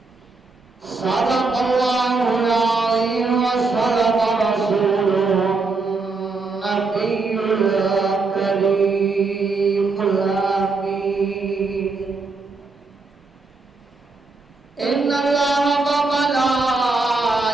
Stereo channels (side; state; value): left; quieter; 3.9 dB